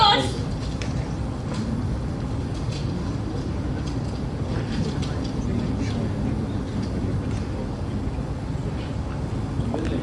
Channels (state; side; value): identical; both; correlation 1.00